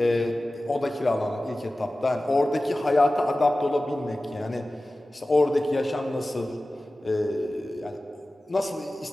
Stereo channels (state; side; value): normal; both; correlation 0.96